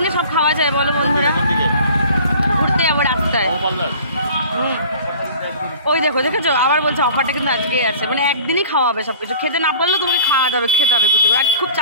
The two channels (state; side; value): inverted; both; correlation -0.46